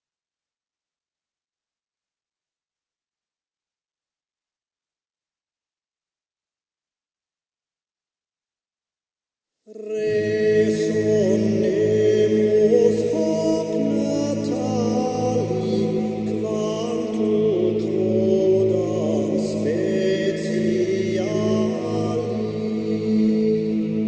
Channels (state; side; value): identical; both; correlation 1.00